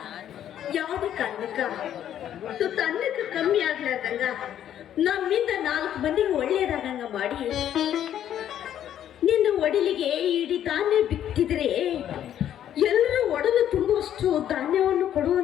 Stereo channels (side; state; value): right; quieter; 10.6 dB